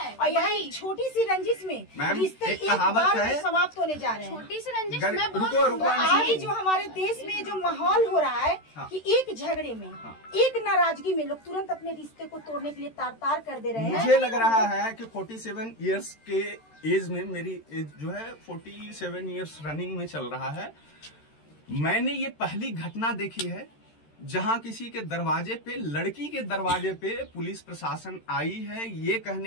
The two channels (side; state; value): right; late; 13 ms